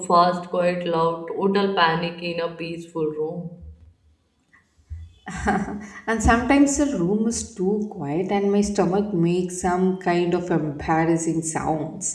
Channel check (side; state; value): both; identical; correlation 1.00